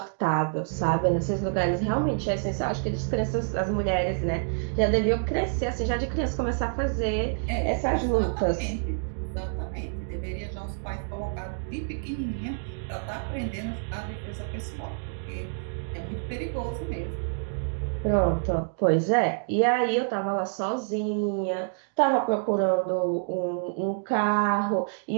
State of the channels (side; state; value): left; silent; digital silence